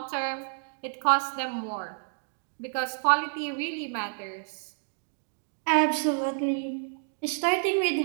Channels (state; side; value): silent; left; digital silence